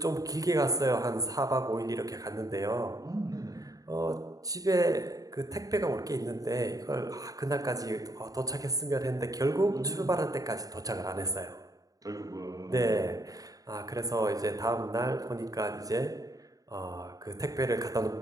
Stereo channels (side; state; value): left; late; 0.17 ms